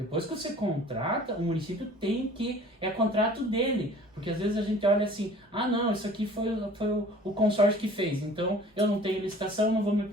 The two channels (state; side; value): normal; both; correlation 0.49